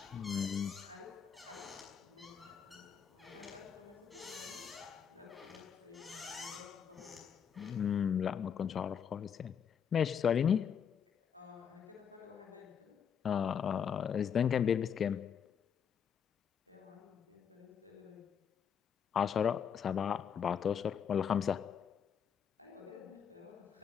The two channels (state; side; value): quieter; right; 7.7 dB